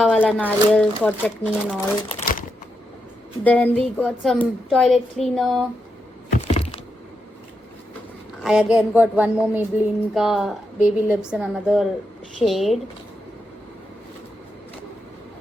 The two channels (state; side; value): normal; both; correlation 0.84